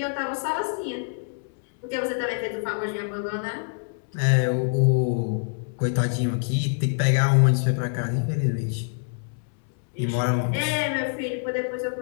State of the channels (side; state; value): right; silent; digital silence